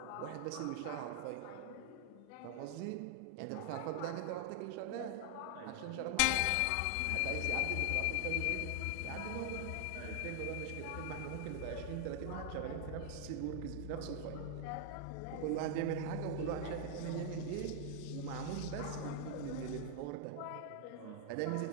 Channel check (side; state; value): both; different; correlation 0.00